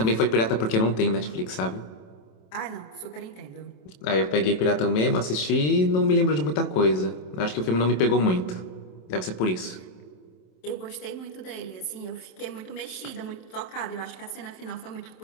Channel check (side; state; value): right; late; 27 ms